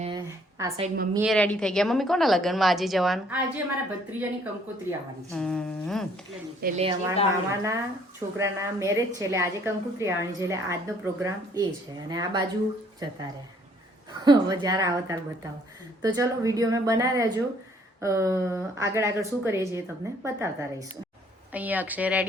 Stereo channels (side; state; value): both; normal; correlation 0.62